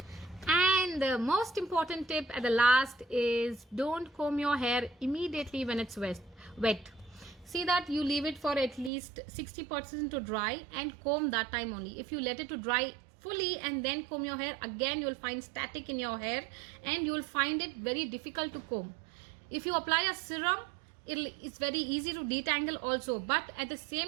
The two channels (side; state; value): left; drops out; at 8.9 s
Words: And the most important tip at the last is, don't comb your hair immediately when it's wet. See that you leave it for at least 60% to dry and comb that time only. If you let it to dry fully and then comb your hair, again you will find static in your hair and you will find it very difficult to comb. If you apply a serum, it's very easy to detangle also, but at the